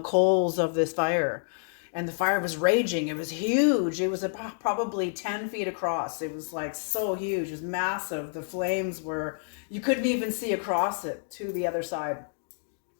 of this fire. And the fire was raging. It was huge. It was probably 10 feet across. It was so huge. It was massive. The flames you couldn't even see across it to the other side.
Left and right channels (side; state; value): right; silent; digital silence